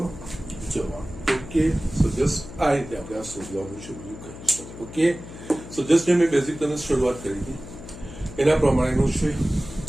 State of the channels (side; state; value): left; noise; hum, 14 dB below the sound